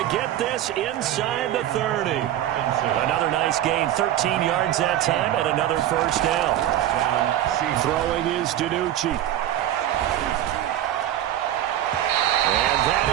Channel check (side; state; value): left; quieter; 12.2 dB